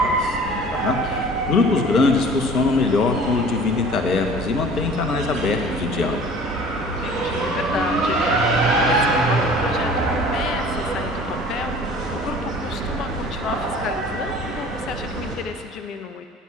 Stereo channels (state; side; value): normal; both; correlation 0.46